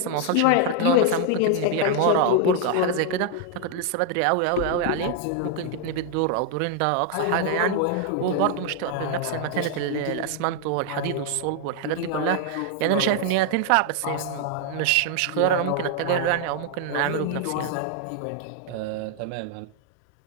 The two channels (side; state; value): both; different; correlation 0.00